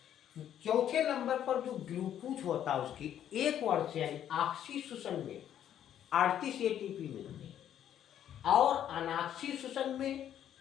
चौथे नंबर पर जो ग्लूकोज होता है उसकी एक वर्ष से यानी ऑक्सीशोषण में 38 एटीपी मिलते हैं, और अनाक्सीशोषण में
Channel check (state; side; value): quieter; right; 10.4 dB